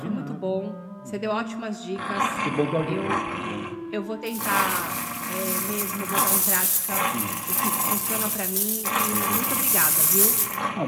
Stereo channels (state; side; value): identical; both; correlation 1.00